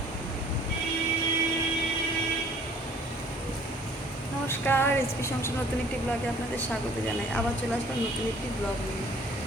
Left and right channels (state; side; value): normal; both; correlation 0.54